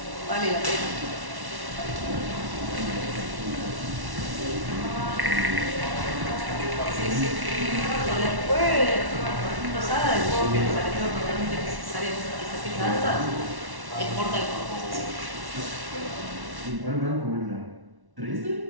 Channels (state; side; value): late; left; 1.1 ms